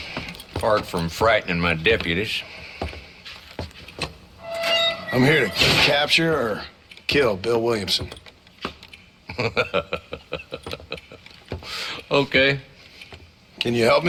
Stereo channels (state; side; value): identical; both; correlation 1.00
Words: Apart from frightening my deputies. I'm here to capture or kill Bill Williamson. Okay. Can you help